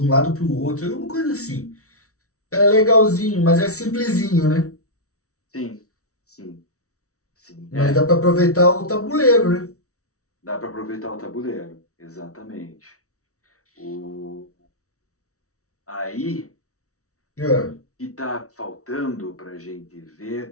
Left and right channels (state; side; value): late; right; 0.64 ms